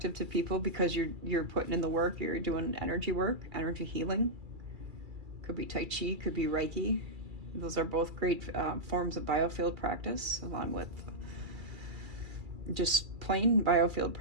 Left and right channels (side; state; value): left; late; 2.3 ms